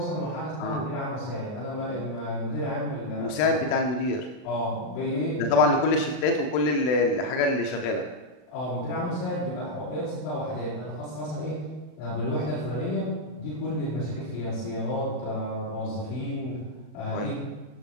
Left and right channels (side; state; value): right; late; 40 ms